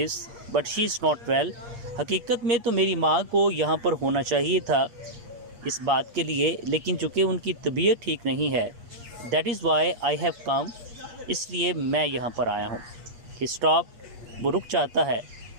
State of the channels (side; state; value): left; late; 8.4 ms